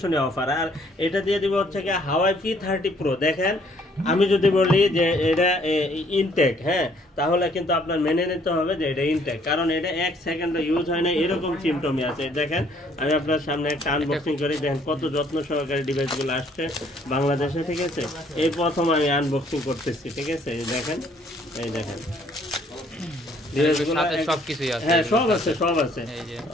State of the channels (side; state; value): both; normal; correlation 0.63